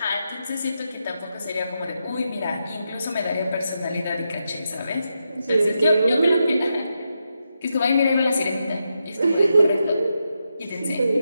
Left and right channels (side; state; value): both; inverted; correlation -0.85